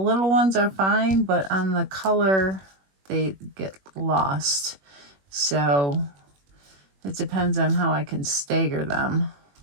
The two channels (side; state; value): left; late; 21 ms